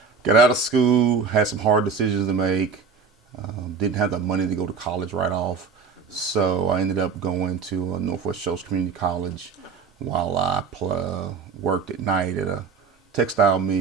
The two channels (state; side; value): quieter; left; 5.5 dB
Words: Got out of school, had some hard decisions to make. Didn't have the money to go to college right off. So I ended up going to Northwest Shoals Community College while I worked at night at a textile